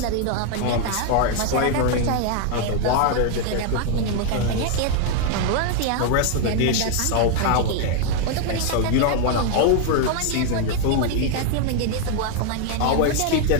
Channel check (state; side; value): different; both; correlation 0.00